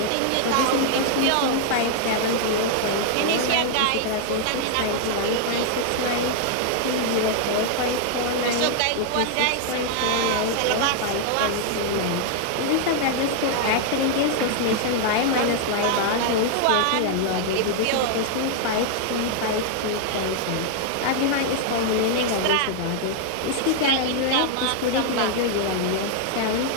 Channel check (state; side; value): different; both; correlation 0.00